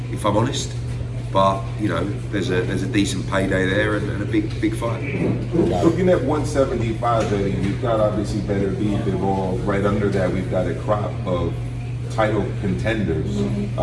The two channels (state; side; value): identical; both; correlation 1.00